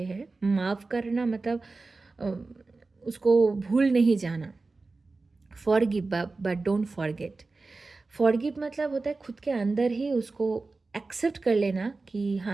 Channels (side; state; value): left; quieter; 3.7 dB